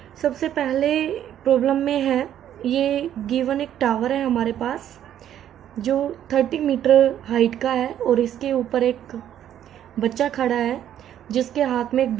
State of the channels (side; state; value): left; quieter; 10.8 dB